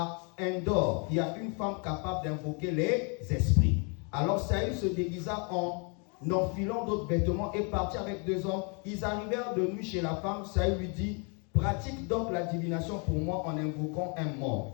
Endor, il y a une femme capable d'invoquer les esprits. Alors Saül se déguisa en enfilant d'autres vêtements et partit avec 2 hommes. Ils arrivèrent de nuit chez la femme. Saül lui dit, pratique donc la divination pour moi en invoquant un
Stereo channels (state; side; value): quieter; right; 36.1 dB